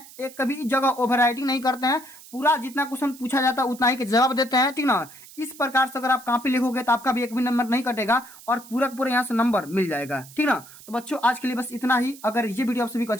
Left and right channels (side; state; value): right; noise; hiss, 19 dB below the sound